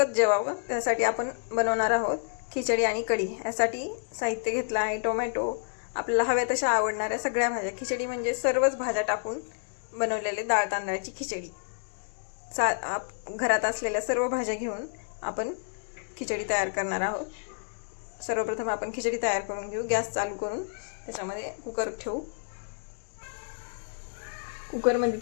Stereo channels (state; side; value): silent; right; 58 dB below the other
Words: जेवावं त्यासाठी आपण बनवणार आहोत खिचडी आणि कढी. यासाठी साहित्य घेतलं आहे टोमॅटो, आपल्याला हव्या तशा आवडणाऱ्या सगळ्या भाज्या. खिचडी म्हणजे सर्वच भाज्या टाकून बनवलेले डाळ तांदळाची खिचडी. घरात असलेल्या सर्व भाज्या घेऊन आपण खिचडी तयार करणार आहोत. सर्वप्रथम आपण खिचडी तयार करून घेऊ. गॅस चालू करून त्याच्यामध्ये कुकर ठेवू. कुकरमध्ये